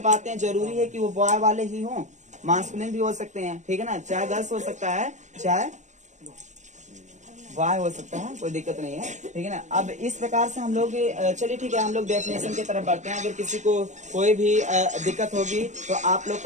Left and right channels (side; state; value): left; late; 0.35 ms